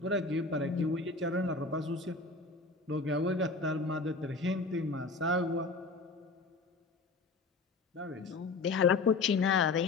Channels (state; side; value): quieter; right; 3.7 dB